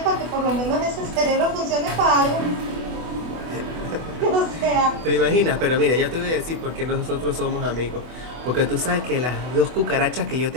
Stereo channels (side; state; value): left; late; 24 ms